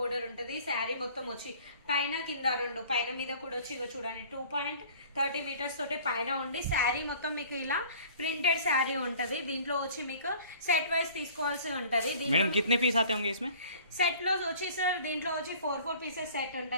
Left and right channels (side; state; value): both; inverted; correlation -0.49